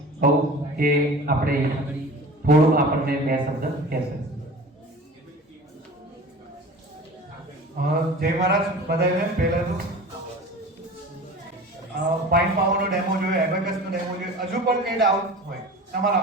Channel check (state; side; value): normal; both; correlation 0.38